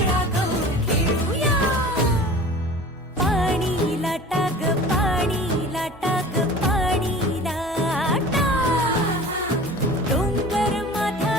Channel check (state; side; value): normal; both; correlation 0.40